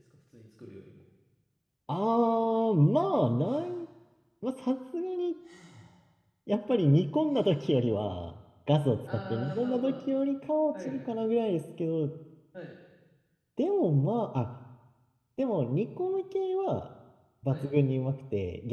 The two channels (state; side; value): identical; both; correlation 1.00